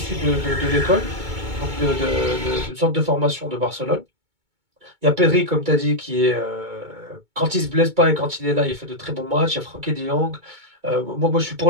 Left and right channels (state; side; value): late; left; 2.2 ms